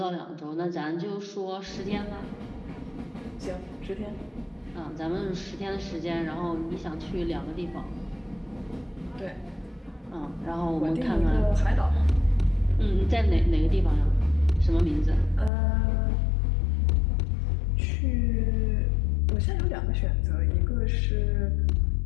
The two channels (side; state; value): right; drops out; at 15.5 s